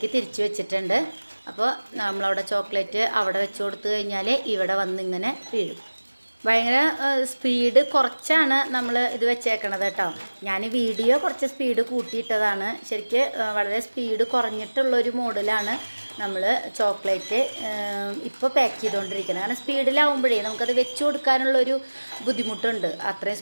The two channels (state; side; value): inverted; both; correlation -1.00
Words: തിരിച്ച് വെച്ചിട്ടുണ്ട്. അപ്പോൾ നമ്മളവിടെ ചോക്ലേറ്റ് അവിടെ വെച്ച് കൊടുത്തു കഴിഞ്ഞാൽ ഇവിടെ വന്നിങ്ങനെ വീഴും. ഭയങ്കര സ്പീഡ് കുറച്ചാണ് നമ്മൾ ഇത് വെച്ചേക്കണത് കേട്ടോ. ഞാൻ വീഡിയോ കുറച്ച് സ്പീഡ് കൂട്ടിയിട്ടതാണ്. ശരിക്ക് വളരെ സ്പീഡ് കുറഞ്ഞിട്ടുള്ളൊരു മോഡിലാണ് നമ്മൾ ചോക്ലേറ്റ് ഇപ്പോൾ പാക്ക് ചെയ്തുകൊണ്ടിരിക്കുന്നത്. കാരണം സ്പീഡിലാവുമ്പോഴേ നമുക്കത് വെച്ച് കൊടുക്കാനുള്ളൊരു ബുദ്ധിമുട്ടുണ്ട്, അത്രയും